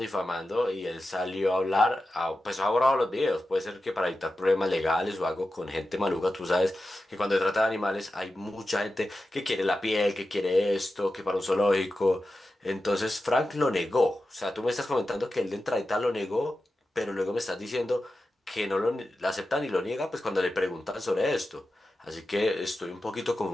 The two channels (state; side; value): normal; both; correlation 0.92